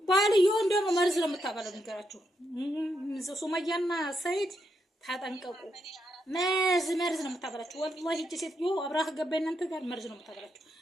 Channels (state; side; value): normal; both; correlation 0.81